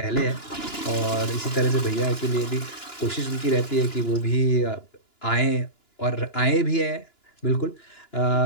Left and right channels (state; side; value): late; right; 2.9 ms